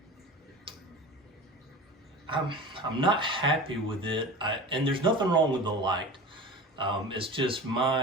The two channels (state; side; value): normal; both; correlation 0.34